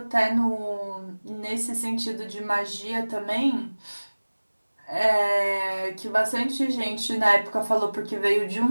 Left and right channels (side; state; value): both; inverted; correlation -1.00